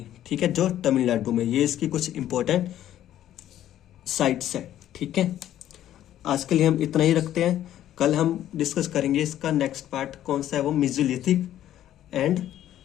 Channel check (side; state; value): right; quieter; 12.1 dB